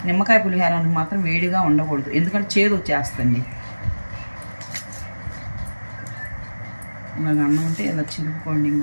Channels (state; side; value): inverted; both; correlation -1.00